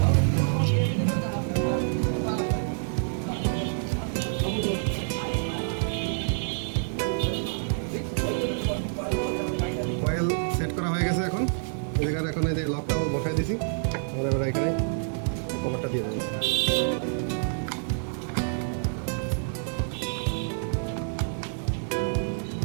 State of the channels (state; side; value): silent; left; digital silence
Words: এখন এই যে লকটাও বসাই দিছি, আমরা এবার এখানে কভারটা দিয়ে দেবো।